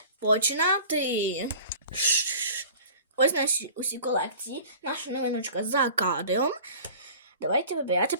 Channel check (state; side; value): inverted; both; correlation -0.43